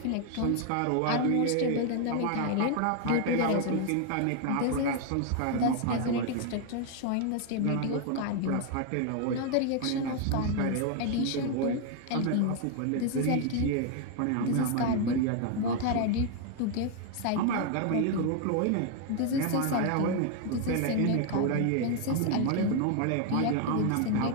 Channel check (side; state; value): both; different; correlation 0.00